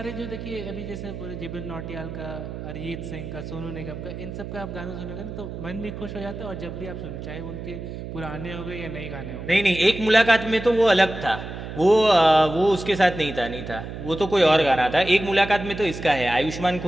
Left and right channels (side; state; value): right; noise; hum, 9 dB below the sound